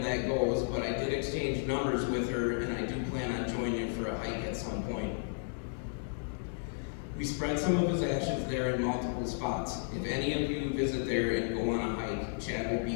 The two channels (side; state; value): right; silent; digital silence